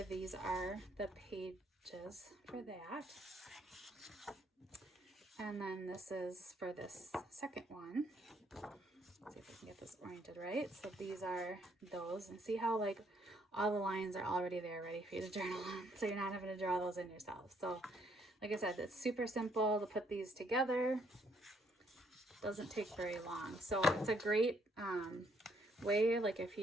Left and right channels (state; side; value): normal; both; correlation 0.69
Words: These are the pages for that. And then this is for this second one. Let's see if I can get this oriented right. So these are those, and see how like all the lines are already there ready for you to journal on. So you're not having to draw those in yourself. So like I said, it's super simple to put these together. Doesn't take very long. So it's a great way, like if